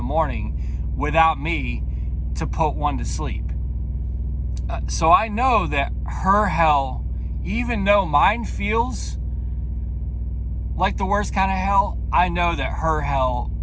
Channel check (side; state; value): both; identical; correlation 1.00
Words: morning without me to put one to sleep. So I know that her hell, even though mine feels like the worst kind of hell, I know that her hell